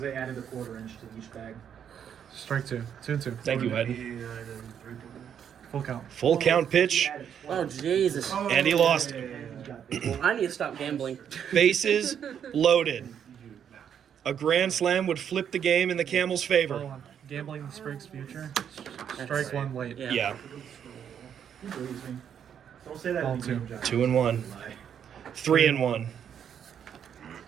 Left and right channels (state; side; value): quieter; left; 8.6 dB